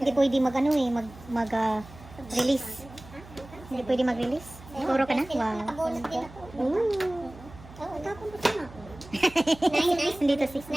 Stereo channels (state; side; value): noise; right; hum, 19 dB below the sound